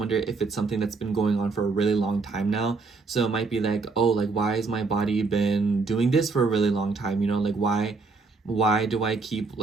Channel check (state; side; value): quieter; left; 4.1 dB